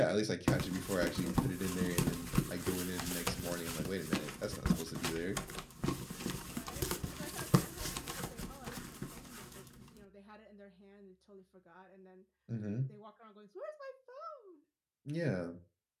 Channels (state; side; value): identical; both; correlation 1.00